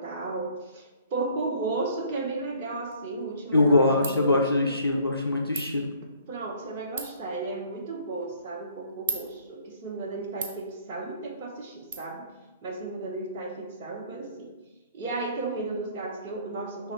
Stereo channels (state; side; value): inverted; both; correlation -0.57